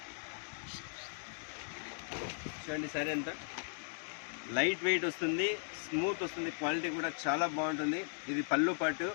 చూడండి, సారీ అంతా లైట్ వెయిట్ వస్తుంది, స్మూత్ వస్తుంది, క్వాలిటీ కూడా చాలా బాగుంటుంది. ఇది పళ్ళు పాటు.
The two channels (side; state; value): right; silent; digital silence